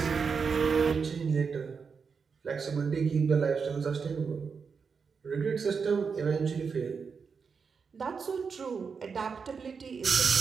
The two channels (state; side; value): quieter; left; 5.6 dB